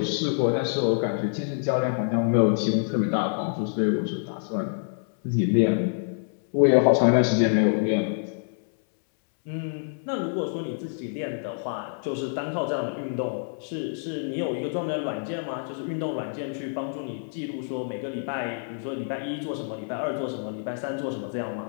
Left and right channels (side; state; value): right; silent; 60 dB below the other